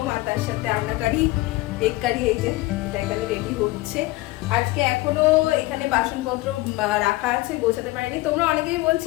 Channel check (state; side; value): quieter; right; 19.6 dB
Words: আর তার সাথে আন্ডা কারি, এগ কারি, এই যে এটা এখানে রেডি হচ্ছে। আজকে এখনো এখানে বাসনপত্র রাখা আছে, গোছাতে পারিনি। তোমরা অনেকেই